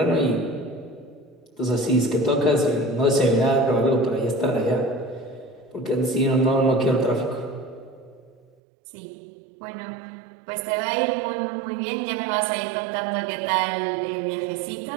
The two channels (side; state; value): left; drops out; at 8.4 s